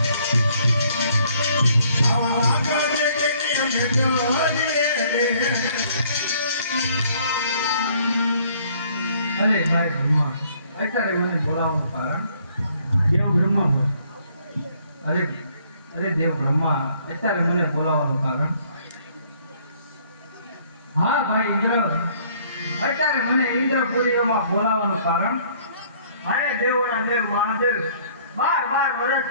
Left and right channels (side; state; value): both; inverted; correlation -0.62